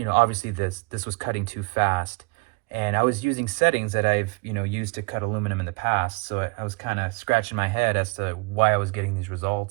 obviously this was cutting too fast. And I was using settings that I've used to cut aluminum in the past, so I was kind of scratching my head as to why I was getting these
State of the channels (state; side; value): quieter; left; 29.2 dB